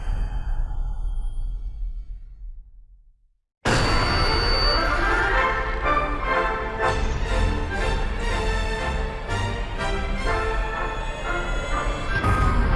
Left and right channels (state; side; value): identical; both; correlation 1.00